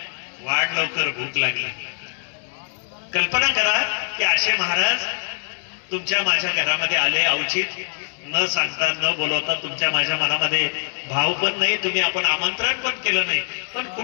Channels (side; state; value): right; silent; 62 dB below the other